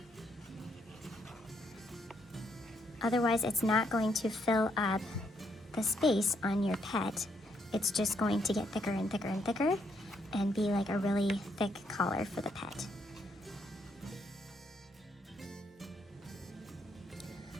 Otherwise, it's not going to fill up the space on your pet. It's just going to get thicker and thicker and thicker and be like a really thick collar for the pet.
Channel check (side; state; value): both; normal; correlation 0.75